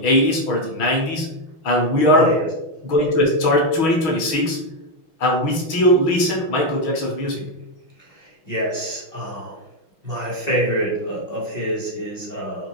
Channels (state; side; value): late; right; 6.2 ms